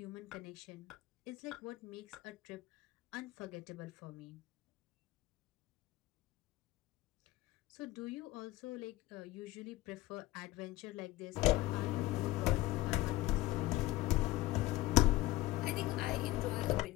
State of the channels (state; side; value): quieter; right; 17.7 dB